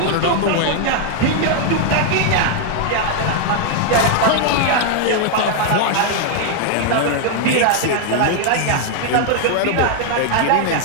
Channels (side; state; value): both; different; correlation 0.00